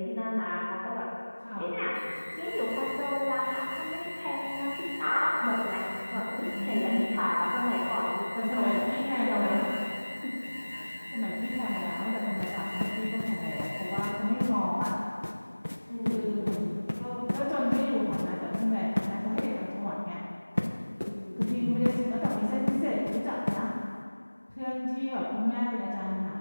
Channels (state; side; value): inverted; both; correlation -1.00